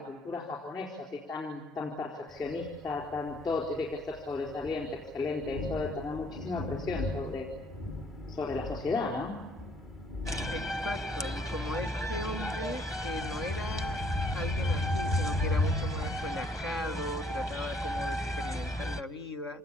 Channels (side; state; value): both; normal; correlation 0.64